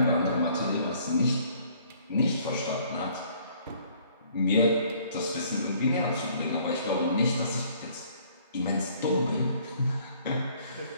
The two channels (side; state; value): both; inverted; correlation -0.59